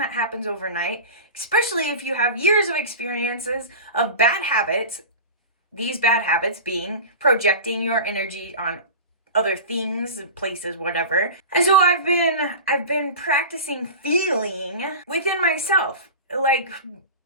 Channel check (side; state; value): both; inverted; correlation -0.31